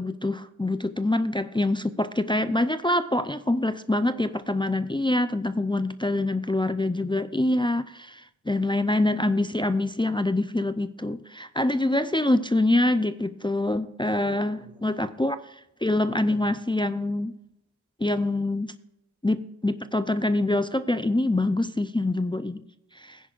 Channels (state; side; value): normal; both; correlation 0.81